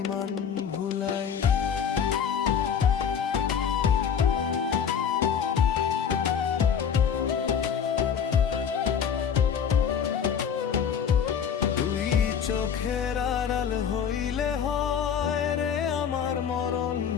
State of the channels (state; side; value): quieter; right; 7.6 dB